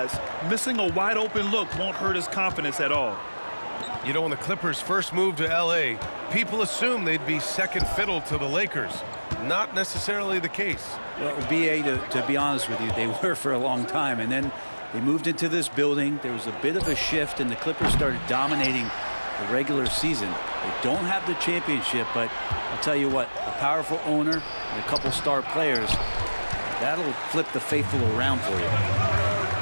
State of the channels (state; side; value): inverted; both; correlation -1.00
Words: missing a wide-open look won't hurt his confidence at all. You know, when the Clippers first moved to L.A., people assumed they'd be second fiddle to the Lakers. Not necessarily the case. Well, B.A., to be honest with you, they were for a long time. And then they moved into this building. There was a bit of a shift, and the Clippers started dominating the regular season. They don't have the championship, but I'll tell you what, a powerful owner and a couple star players, that'll flip the faithful around for you.